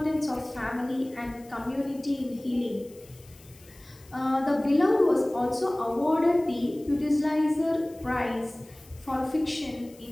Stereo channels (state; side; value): noise; left; hiss, 25 dB below the sound